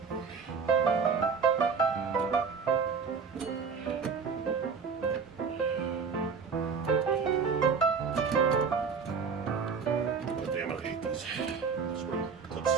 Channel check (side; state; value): left; quieter; 5.6 dB